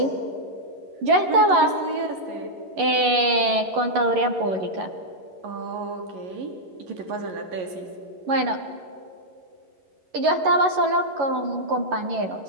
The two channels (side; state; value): left; late; 11 ms